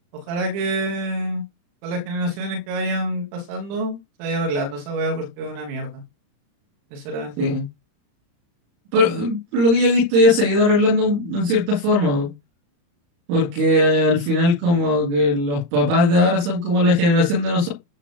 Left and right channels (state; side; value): late; left; 35 ms